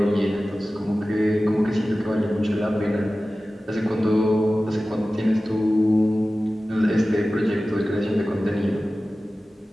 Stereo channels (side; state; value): both; normal; correlation 0.96